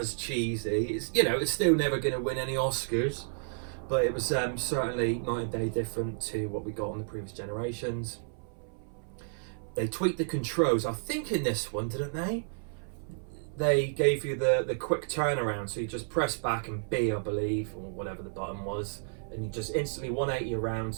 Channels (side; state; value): left; silent; 57 dB below the other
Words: cheesy. It's still never going to win any Oscars, but it was certainly night and day different to what we got on the previous generations. They tweaked the controls, I think, in this one, didn't they? They gave you the quick turnaround, so you just press back and B, I believe, or whatever the button was, and you just instantly 180 around